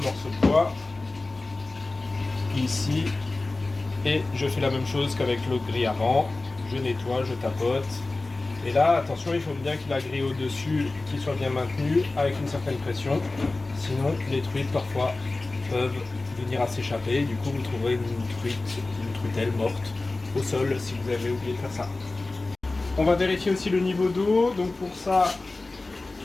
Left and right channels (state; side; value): quieter; right; 3.2 dB